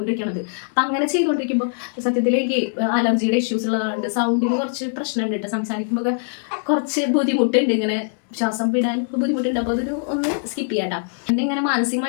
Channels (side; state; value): right; silent; digital silence